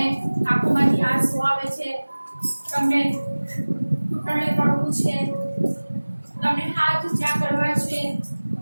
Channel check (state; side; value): inverted; both; correlation -1.00